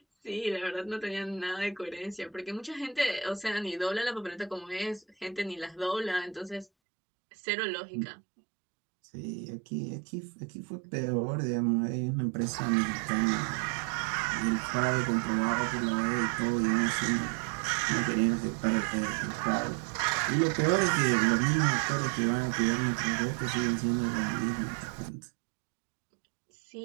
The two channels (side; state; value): left; drops out; at 6.7 s